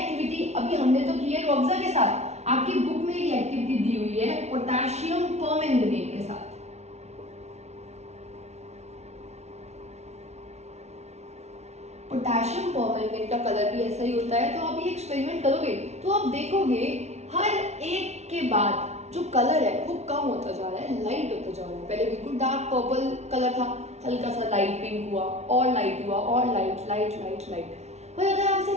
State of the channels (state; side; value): late; left; 0.32 ms